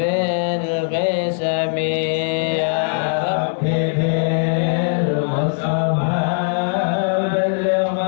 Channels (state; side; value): silent; right; digital silence